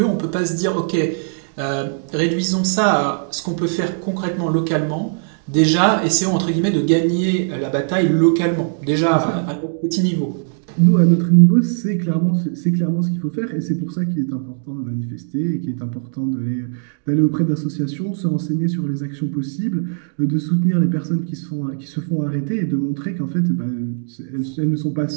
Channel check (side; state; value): left; silent; digital silence